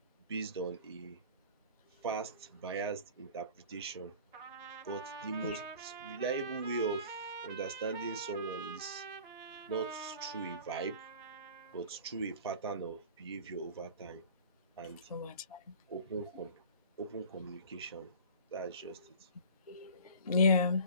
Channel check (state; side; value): inverted; both; correlation -0.42